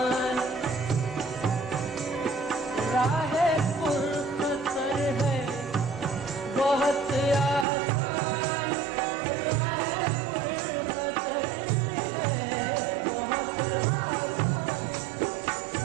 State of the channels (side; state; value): left; drops out; at 7.7 s